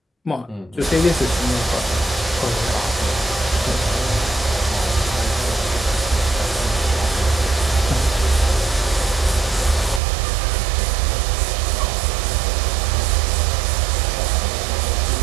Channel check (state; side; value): drops out; left; at 10.0 s